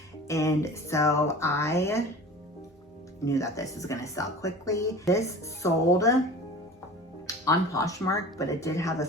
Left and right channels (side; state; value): both; normal; correlation 0.38